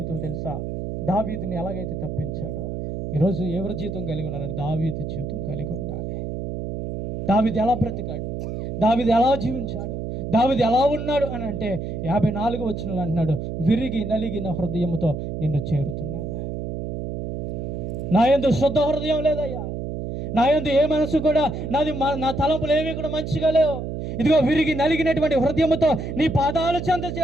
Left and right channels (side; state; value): right; noise; hum, 5 dB below the sound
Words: తెలుసా, దావీదుని ఎలాగైతే తప్పించాడో ఈరోజు ఎవరి జీవితం కలిగి ఉన్నారని దావీదు జీవితం కలిగి ఉండాలి. దావీదు ఎలా బ్రతికాడు, దావీదు ఎలా జీవించాడు, దావీదు ఎలా ఉన్నాడు అని అంటే 54 వచనంలో అంటున్నాడు, విరిగి నలిగిన హృదయంతో నిన్ను చేరుతున్నాను. నా యందు శుద్ధ హృదయం లేదయ్యా, నా యందు ఏ మనసు కూడా నా తలంపులు ఏవి కూడా మంచిగా లేవు. ఇదిగో విరిగి నలిగినటువంటి హృదయంతో నీ పాదాల చెంత